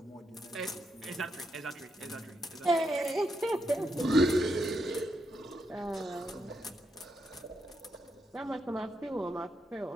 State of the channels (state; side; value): normal; both; correlation 0.81